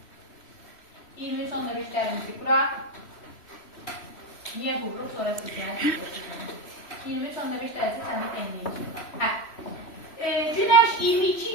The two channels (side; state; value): right; late; 3.1 ms